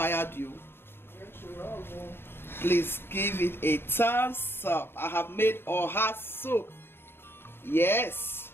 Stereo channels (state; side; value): late; right; 0.11 ms